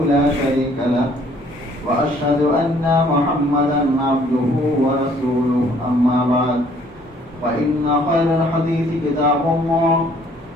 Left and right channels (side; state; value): both; normal; correlation 0.60